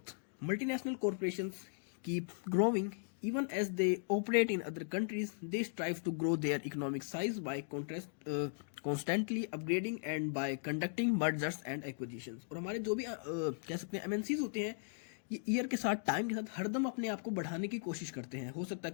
Multinational corporations keep growing even as they operate in other countries. They strive to grow their economic size by constantly upgrading and by conducting mergers and acquisitions. और हमारे जो भी कह सकते हैं MNCs होते हैं, ये ईयर के साथ, टाइम के साथ हरदम अपने आप को बढ़ाने की कोशिश करते हैं। हो सकता है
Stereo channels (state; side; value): silent; right; digital silence